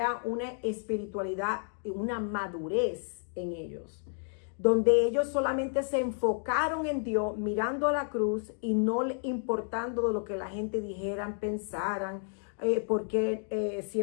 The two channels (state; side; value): silent; right; 57 dB below the other